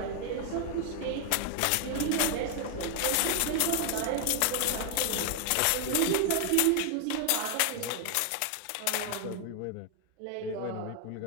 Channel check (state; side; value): different; both; correlation 0.00